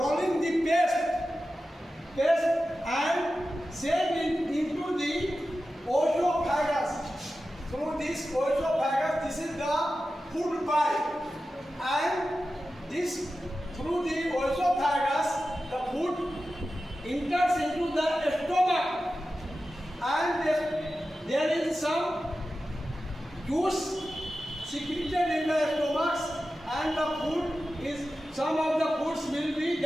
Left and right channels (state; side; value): normal; both; correlation 0.93